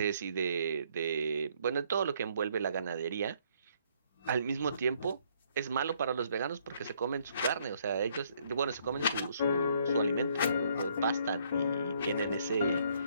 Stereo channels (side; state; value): both; inverted; correlation -0.67